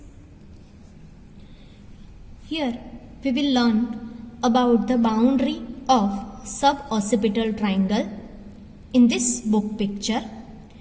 Here we will learn about the boundary of suboccipital triangle. In this book picture,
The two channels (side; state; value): both; identical; correlation 1.00